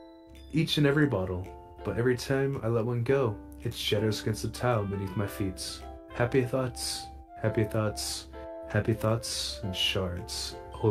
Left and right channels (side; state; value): both; identical; correlation 1.00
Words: Each and every bottle. But every time I let one go, it shatters against the tile beneath my feet. Happy thoughts, happy thoughts, happy thoughts, and shards